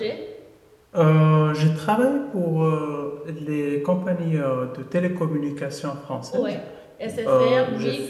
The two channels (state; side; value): identical; both; correlation 1.00